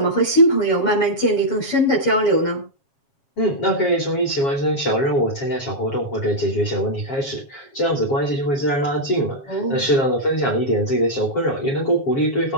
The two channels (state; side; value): late; right; 7.4 ms